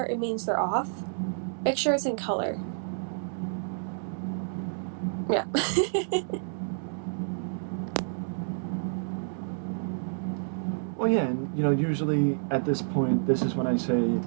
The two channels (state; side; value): silent; left; 58 dB below the other